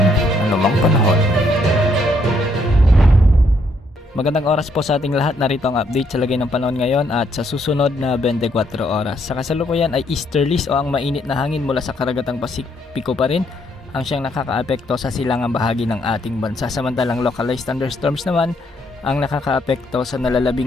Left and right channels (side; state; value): both; normal; correlation 0.72